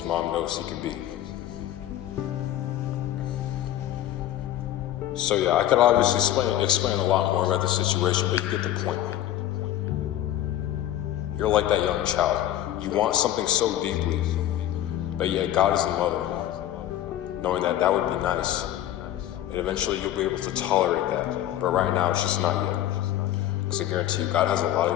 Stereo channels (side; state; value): right; quieter; 12.7 dB